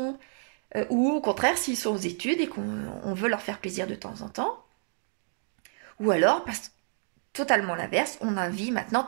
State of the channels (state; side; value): silent; left; digital silence